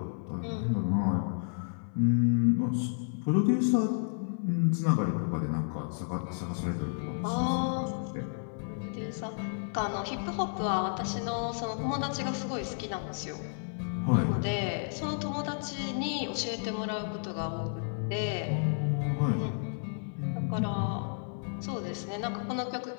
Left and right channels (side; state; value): right; silent; 57 dB below the other